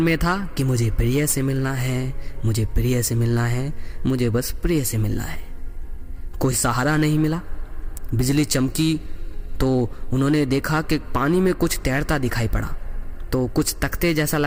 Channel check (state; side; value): identical; both; correlation 1.00